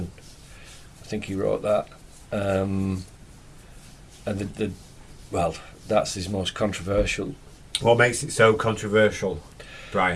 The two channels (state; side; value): identical; both; correlation 1.00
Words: I think he wrote that, and that's his most controversial. What makes it so controversial,